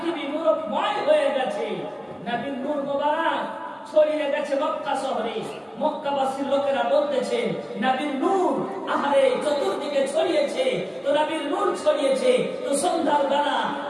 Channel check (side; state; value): both; identical; correlation 1.00